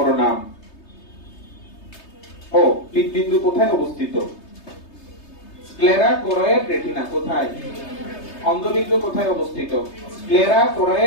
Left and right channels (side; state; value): right; late; 3.3 ms